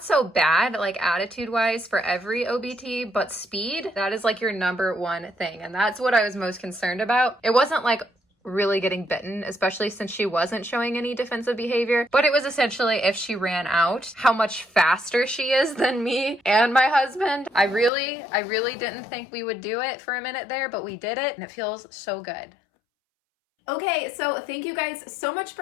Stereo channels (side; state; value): right; drops out; at 17.9 s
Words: so bad, like attitude-wise for every OBT, but speed, that is like your #1 thing. And that's what I was most concerned about. It wasn't like really getting bitten, especially since she wasn't showing any defensive behavior, but it was essentially if she ran out, how much faster she is than me and my husband. I really didn't think we would do it for a minute there, but we did it and it feels so good. Okay, so thank you guys so much